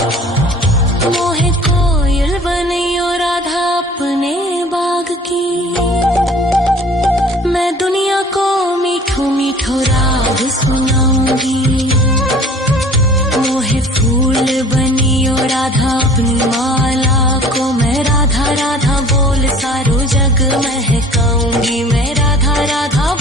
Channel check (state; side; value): normal; both; correlation 0.48